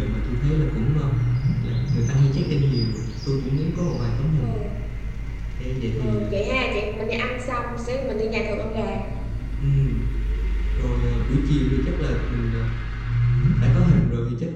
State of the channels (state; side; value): identical; both; correlation 1.00